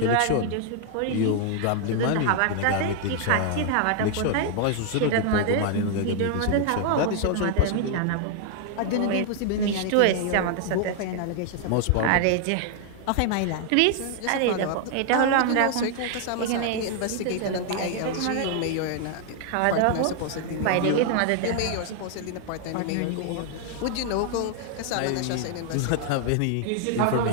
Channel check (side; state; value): both; different; correlation 0.00